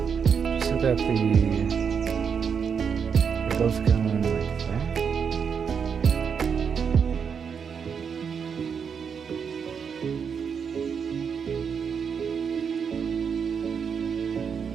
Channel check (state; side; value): quieter; left; 6.7 dB